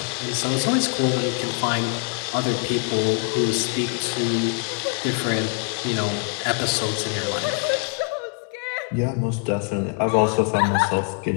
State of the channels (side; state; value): right; quieter; 38.5 dB